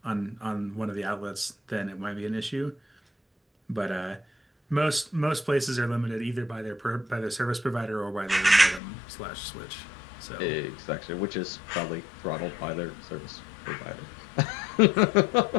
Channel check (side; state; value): right; drops out; at 8.8 s